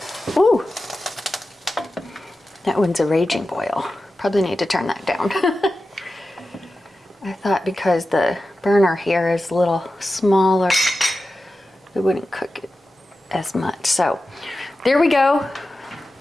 Ooh, that one's a raging boil. Probably need to turn that down. I thought because the burner here is a little smaller, it wouldn't cook it as much. So there we go.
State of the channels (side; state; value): both; normal; correlation 0.93